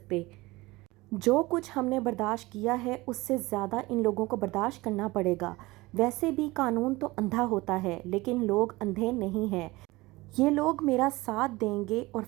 जो कुछ हमने बर्दाश्त किया है उससे ज़्यादा इन लोगों को बर्दाश्त करना पड़ेगा। वैसे भी कानून तो अंधा होता है, लेकिन लोग अंधे नहीं हैं। ये लोग मेरा साथ देंगे और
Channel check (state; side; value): quieter; left; 21.0 dB